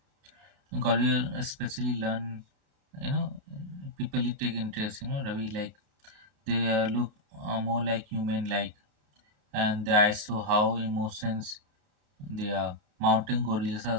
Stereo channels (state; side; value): late; left; 32 ms